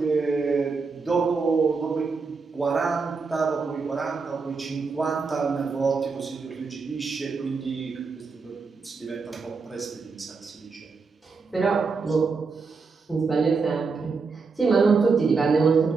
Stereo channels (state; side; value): quieter; left; 4.6 dB